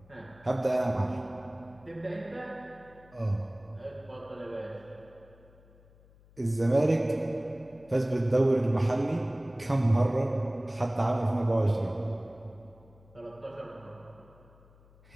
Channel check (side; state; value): left; noise; hum, 26 dB below the sound